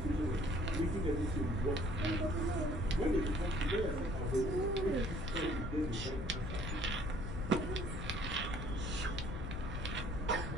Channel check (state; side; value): noise; left; rumble, 5 dB below the sound